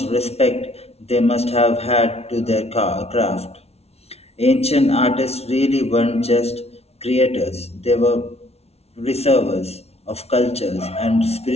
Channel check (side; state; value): right; late; 0.30 ms